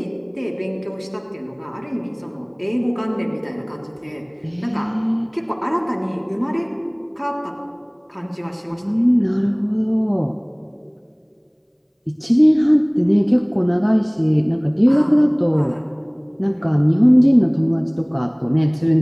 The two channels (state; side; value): identical; both; correlation 1.00